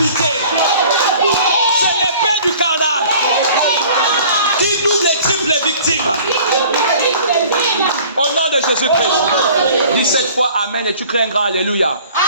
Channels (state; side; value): inverted; both; correlation -0.49